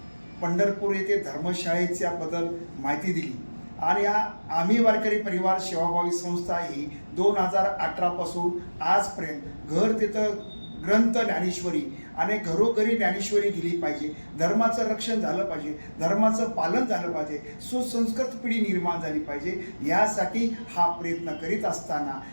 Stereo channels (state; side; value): inverted; both; correlation -1.00